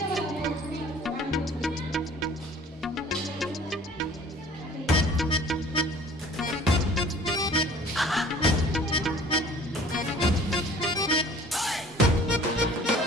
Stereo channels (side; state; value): both; normal; correlation 0.49